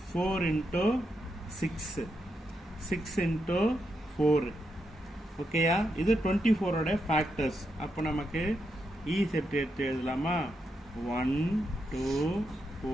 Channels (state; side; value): normal; both; correlation 0.83